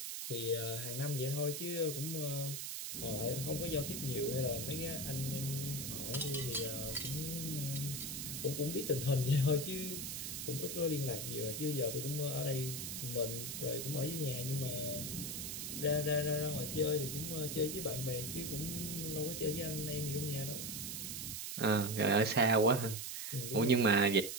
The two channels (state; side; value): noise; right; hiss, 5 dB below the sound